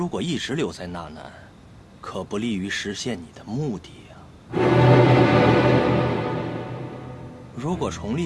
果一直留在纳南，可不利于实现你的目的呀。如果崇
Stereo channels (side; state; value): both; identical; correlation 1.00